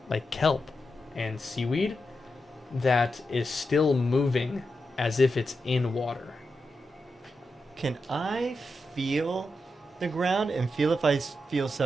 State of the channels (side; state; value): both; normal; correlation 0.87